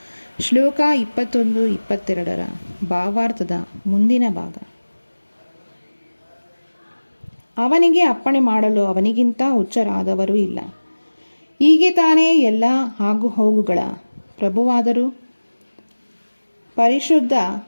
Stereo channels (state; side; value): inverted; both; correlation -1.00